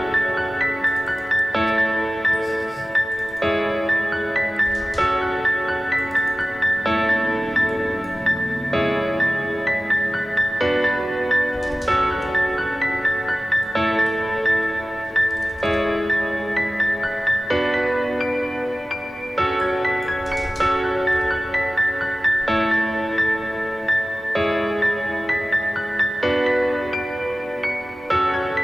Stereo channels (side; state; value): both; normal; correlation 0.96